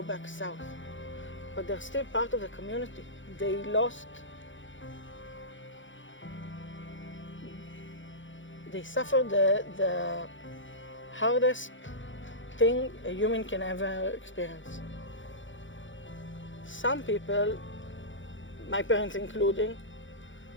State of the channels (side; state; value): right; late; 0.56 ms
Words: back south, but they're still part of the community. They suffered the hardest thing a human can ever experience. Some people, my parents including,